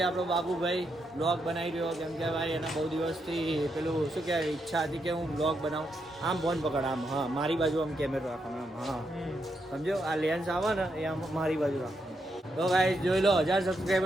આપણો બાબુભાઈ બ્લોગ બનાવી રહ્યો, કેમ કે ભાઈ એના બહુ દિવસથી પેલું શું કહેવાય ઈચ્છા હતી કે હું બ્લોગ બનાવું. આમ ફોન પકડ, આમ હા મારી બાજુ આમ કેમેરો રાખવાનો, આમ હા સમજો. આ લેન્સ આવે ને એ આમ મારી બાજુ રાખવાનો. તો ભાઈ જોઈ લો 1000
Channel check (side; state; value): both; normal; correlation 0.81